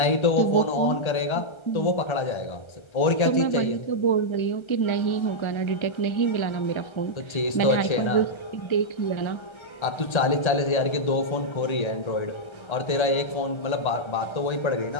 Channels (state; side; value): late; right; 1.3 ms